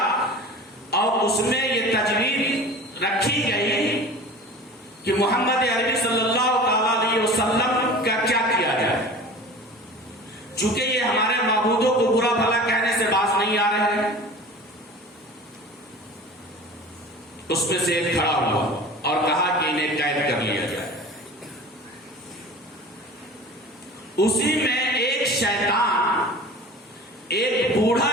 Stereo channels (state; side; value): normal; both; correlation 0.39